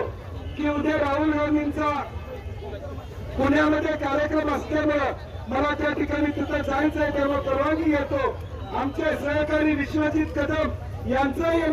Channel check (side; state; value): both; identical; correlation 1.00